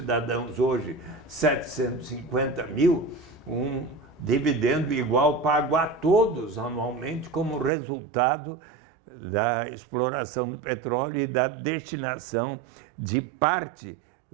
hoje 750 mil, um dividendo igual pago a todos anualmente como resultado da exploração do petróleo e da destinação de parte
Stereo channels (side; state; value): left; drops out; at 7.7 s